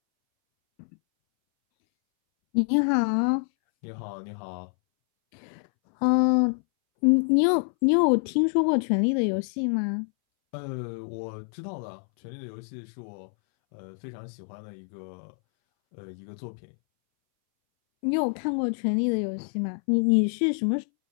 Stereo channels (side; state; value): right; silent; 61 dB below the other